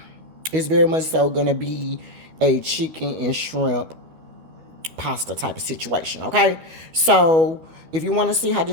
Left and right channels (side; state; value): left; late; 12 ms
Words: it's very much so going to be a chicken and shrimp pasta type of situation, okay? So if you want to see how